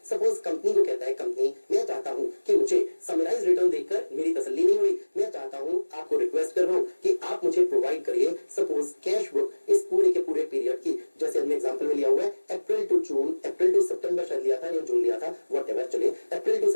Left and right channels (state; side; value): inverted; both; correlation -1.00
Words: सपोज कंपनी को कहता है, कंपनी मैं चाहता हूं कि मुझे समराइज रिटर्न देखकर मेरी तसल्ली नहीं हुई, मैं चाहता हूं, आपको रिक्वेस्ट कर रहा हूं कि आप मुझे प्रोवाइड करिए सपोज कैश बुक इस पूरे के पूरे पीरियड की, जैसे हमने एग्जांपल में लिया हुआ है अप्रैल टू जून, अप्रैल टू सितंबर शायद लिया था या जून लिया था, व्हाटएवर, चलिए April to